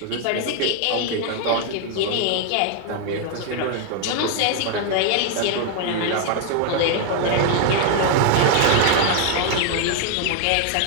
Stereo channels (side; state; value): both; different; correlation 0.01